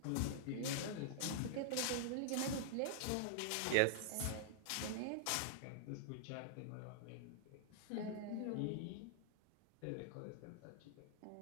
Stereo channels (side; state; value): both; different; correlation -0.01